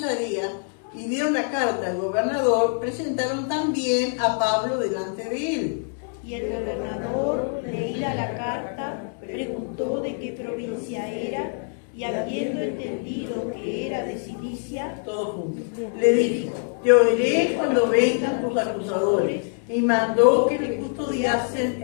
y dieron la carta al gobernador, presentaron también a Pablo delante de él. Y el gobernador, leída la carta, preguntó de qué provincia era, y habiendo entendido que era de Cilicia, Todos juntos. Le dijo: te oiré cuando vengan tus acusadores. Y mandó que le custodiasen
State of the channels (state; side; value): silent; right; 58 dB below the other